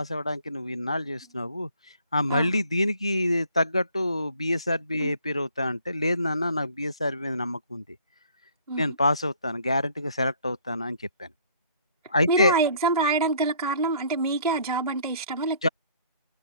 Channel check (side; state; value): both; inverted; correlation -0.60